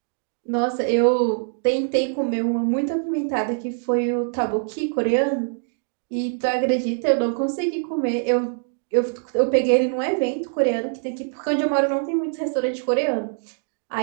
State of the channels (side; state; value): left; silent; digital silence